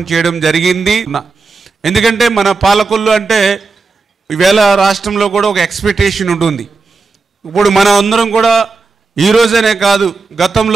చేయడం జరిగింది. ఎందుకంటే మన పాలకొల్లు అంటే ఈవేళ రాష్ట్రంలో కూడా ఒక ఎక్స్పెక్టేషన్ ఉంటుంది. ఇప్పుడు మనం అందరం కూడా ఈ రోజనే కాదు,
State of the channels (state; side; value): quieter; left; 4.2 dB